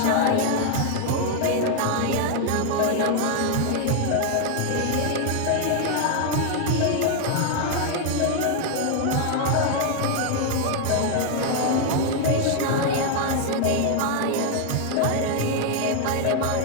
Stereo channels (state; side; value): different; both; correlation 0.00